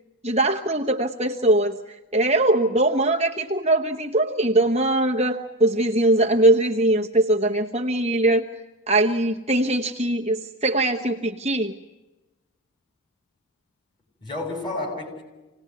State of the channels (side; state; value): both; normal; correlation 0.19